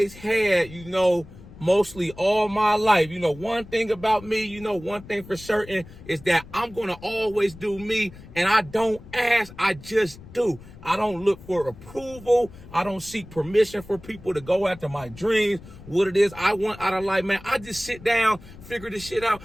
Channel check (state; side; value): noise; left; rumble, 18 dB below the sound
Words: had, mostly all my life. One thing about me, one thing for certain is that I'm going to always do me, and I don't ask, I just do. I don't look for approval. I don't seek permission for people to go after my dreams, what it is I want out of life, man. I just sit down, figure this shit out,